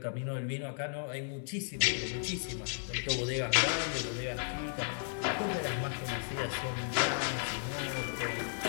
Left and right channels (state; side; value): silent; right; digital silence